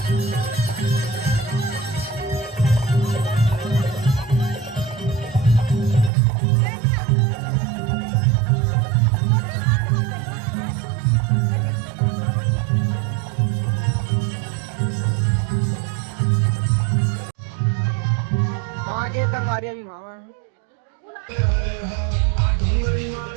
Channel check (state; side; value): drops out; left; at 6.1 s